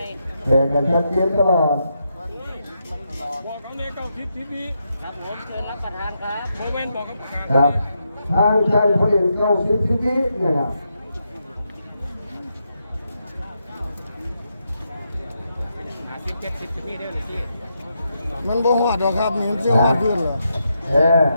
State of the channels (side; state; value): both; inverted; correlation -0.82